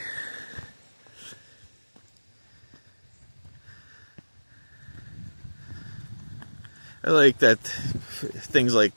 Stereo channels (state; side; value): inverted; both; correlation -1.00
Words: I like that things like